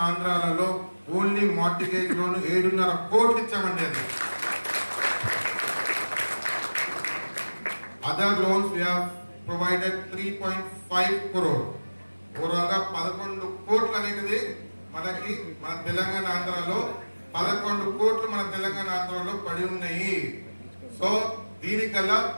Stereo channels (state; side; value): inverted; both; correlation -1.00